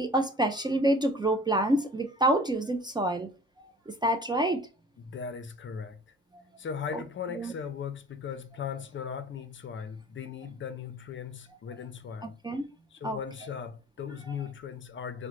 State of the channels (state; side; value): normal; both; correlation 0.47